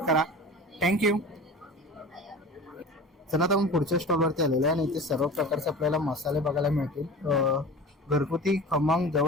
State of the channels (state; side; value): normal; both; correlation 0.35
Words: करा. थँक्यू. चला आता आपण पुढच्या स्टॉलवरती आलेलो आहे आणि इथे सर्व प्रकारचे आपल्याला मसाले बघायला मिळतील. घरगुती खमंग